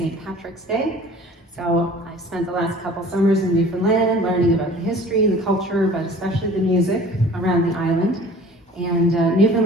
Patrick's Day. So I've spent the last couple summers in Newfoundland learning about the history, the culture, but especially the music around the island. And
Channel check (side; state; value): both; normal; correlation 0.46